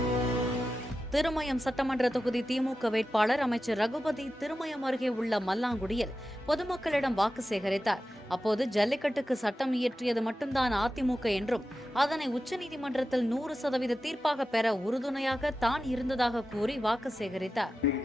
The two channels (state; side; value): normal; both; correlation 0.92